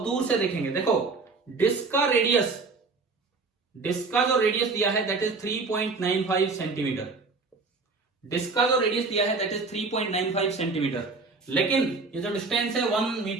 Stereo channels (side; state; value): left; quieter; 4.1 dB